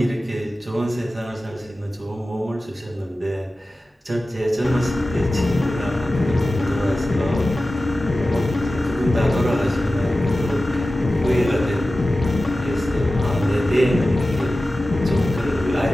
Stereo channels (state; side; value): normal; both; correlation 0.95